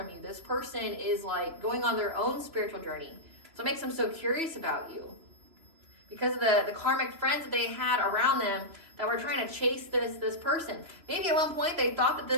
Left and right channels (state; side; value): late; left; 3.0 ms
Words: you. This person is like going on their own spiritual journey. So it makes them so curious about you. Because of the karmic friends that they had around them that were trying to chase this person. Maybe at one point they thought that